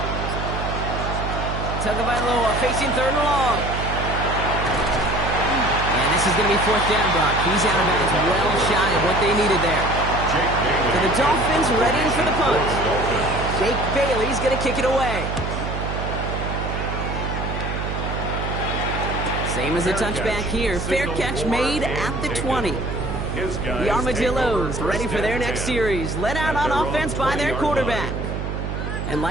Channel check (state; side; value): noise; right; hum, 4 dB below the sound